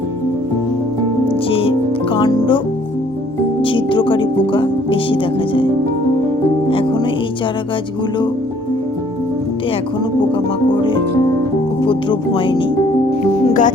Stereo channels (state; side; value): normal; both; correlation 0.60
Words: যে কাণ্ড ছিদ্রকারী পোকা বেশি দেখা যায়। এখনো এই চারা গাছগুলোতে এখনো পোকামাকড়ের উপদ্রব হয়নি।